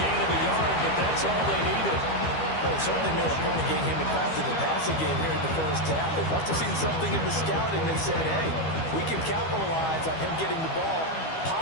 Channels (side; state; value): right; late; 12 ms